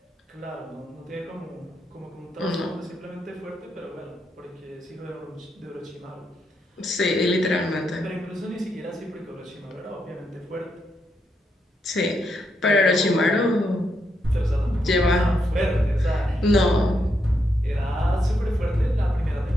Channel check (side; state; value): both; normal; correlation 0.81